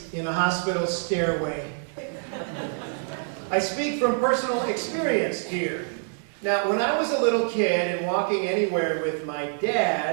in a hospital stairway. I speak from personal experience here. Now, when I was a little kid and walking anywhere with my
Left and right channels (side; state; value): left; silent; 61 dB below the other